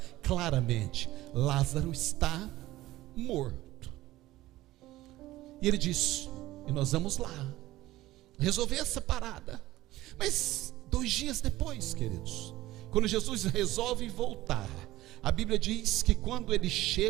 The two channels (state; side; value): quieter; left; 16.7 dB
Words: claramente: Lázaro está morto. E ele diz: e nós vamos lá resolver essa parada. Mas 2 dias depois, queridos, quando Jesus resolve voltar, a Bíblia diz que quando ele